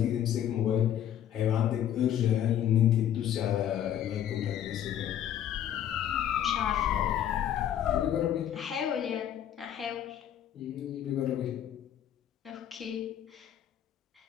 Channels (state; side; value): quieter; right; 10.5 dB